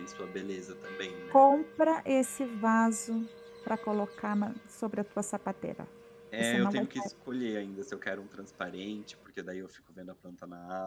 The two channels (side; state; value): both; identical; correlation 1.00